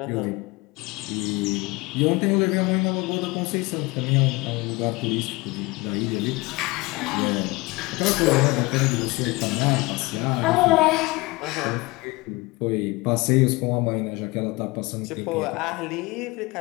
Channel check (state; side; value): quieter; right; 23.4 dB